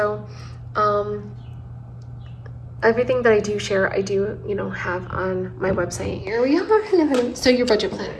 everything that I do share, I do, you know, have on my website. Here we are. Hello. So your budget planner.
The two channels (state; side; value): identical; both; correlation 1.00